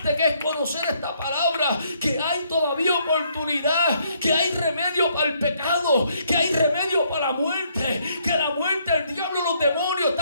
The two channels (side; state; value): both; inverted; correlation -0.69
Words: que es conocer esta palabra, que hay todavía oportunidad, que hay remedio para el pecado, que hay remedio para la muerte, que la muerte, el diablo, los demonios